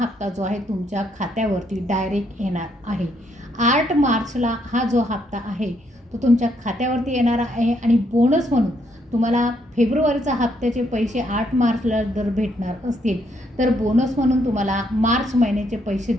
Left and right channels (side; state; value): both; normal; correlation 0.73